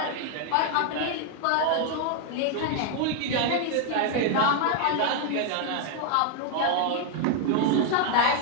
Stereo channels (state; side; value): different; both; correlation 0.00